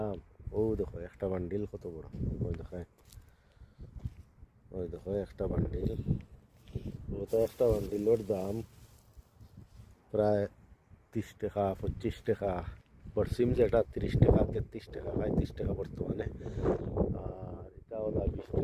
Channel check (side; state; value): both; identical; correlation 1.00